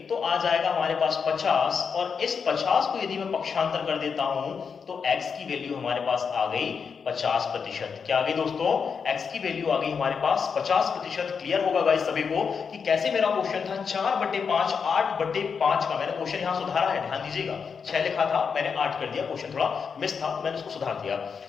तो आ जाएगा हमारे पास 50, और इस 50 को यदि मैं पक्षांतर कर देता हूं तो x की वैल्यू हमारे पास आ गई 50%। क्या आ गई दोस्तों, x की वैल्यू आ गई हमारे पास 50%। क्लियर होगा गाइस सभी को कि कैसे मेरा क्वेश्चन था 4/5 8/5 का। मैंने क्वेश्चन यहां सुधारा है, ध्यान दीजिएगा। 6 लिखा था, मैंने 8 कर दिया, क्वेश्चन थोड़ा मिस था, मैंने उसको सुधार दिया।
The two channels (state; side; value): quieter; right; 6.0 dB